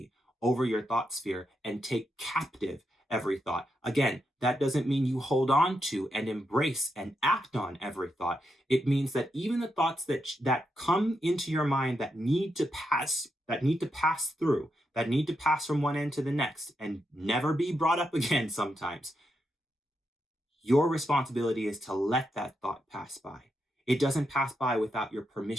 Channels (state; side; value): normal; both; correlation 0.83